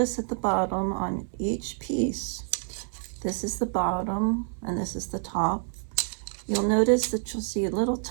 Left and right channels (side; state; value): left; silent; 59 dB below the other